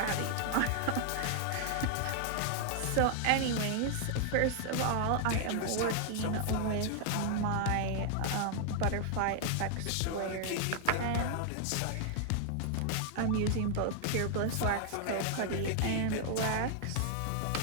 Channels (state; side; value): different; both; correlation 0.00